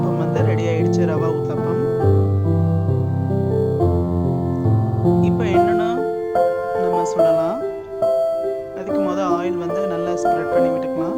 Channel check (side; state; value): both; identical; correlation 1.00